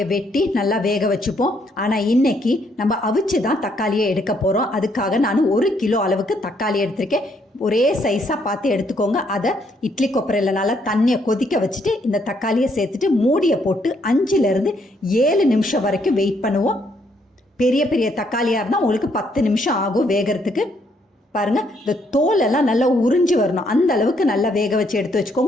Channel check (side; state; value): both; normal; correlation 0.71